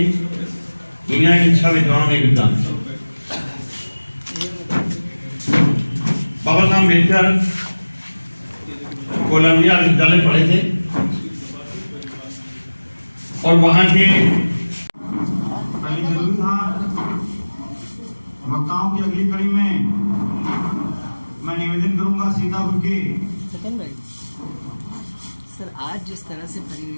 दुनिया के 6 विद्वानों में विद्वान। बाबा साहब अम्बेडकर कोलंबिया विश्वविद्यालय पढ़े थे और वहां के जरूरी था। वक्ताओं की अगली कड़ी में मैं निवेदन करूंगा सीतापुर के सर, आज जिस तरह से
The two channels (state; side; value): inverted; both; correlation -1.00